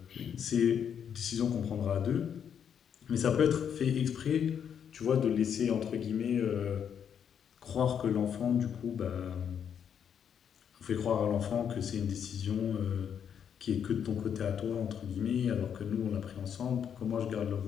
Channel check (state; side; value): quieter; right; 8.2 dB